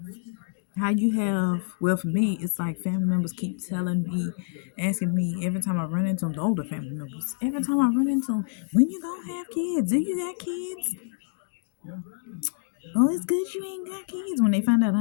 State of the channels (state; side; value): silent; right; digital silence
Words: how you have, well, for me, it's like family members keep telling me, asking me every time I run into them, the older family members, every time I run into them, when you gonna have kids? Do you got kids? Oh, it's good you ain't got kids. When they find out